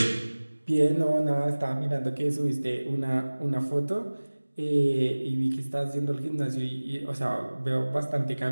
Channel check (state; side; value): inverted; both; correlation -1.00